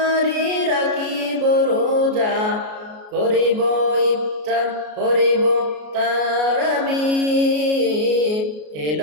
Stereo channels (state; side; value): late; left; 33 ms